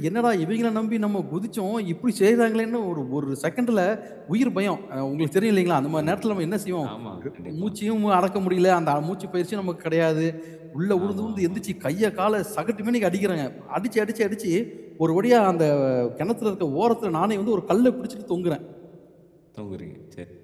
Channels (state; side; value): identical; both; correlation 1.00